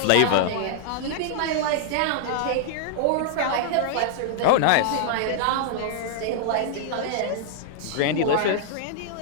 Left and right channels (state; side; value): different; both; correlation -0.01